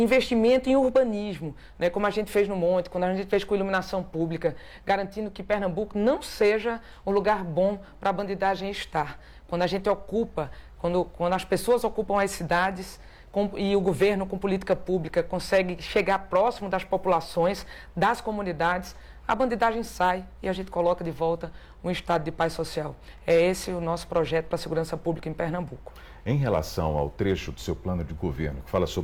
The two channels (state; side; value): identical; both; correlation 1.00